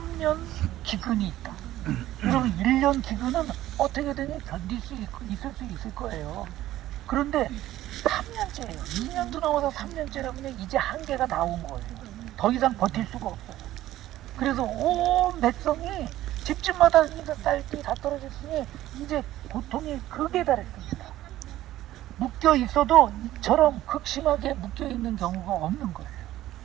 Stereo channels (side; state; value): left; quieter; 14.4 dB